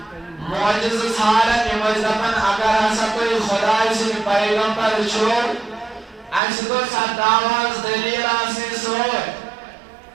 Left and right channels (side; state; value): left; drops out; at 6.4 s